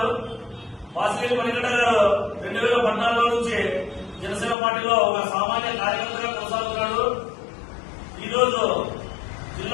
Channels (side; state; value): right; drops out; at 4.5 s